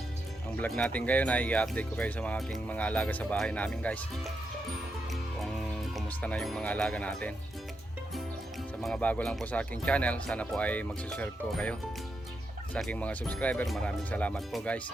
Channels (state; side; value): normal; both; correlation 0.84